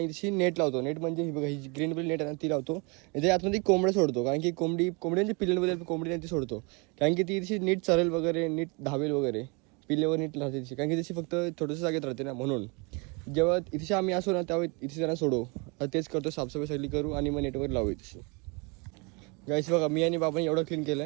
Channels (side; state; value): left; quieter; 30.7 dB